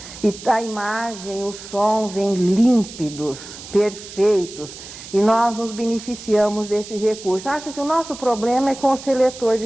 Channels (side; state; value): right; noise; hiss, 14 dB below the sound